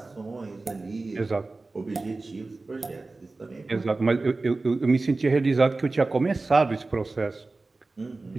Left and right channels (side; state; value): left; quieter; 3.4 dB